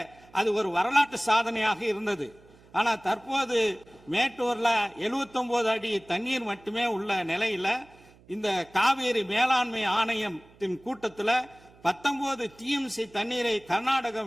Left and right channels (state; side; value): noise; right; hum, 27 dB below the sound